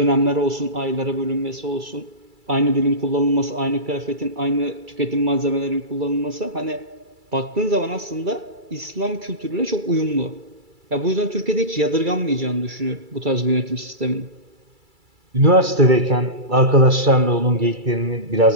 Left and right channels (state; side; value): late; left; 2.3 ms